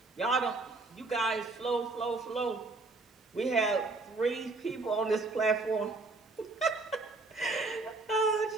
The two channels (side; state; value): left; quieter; 3.5 dB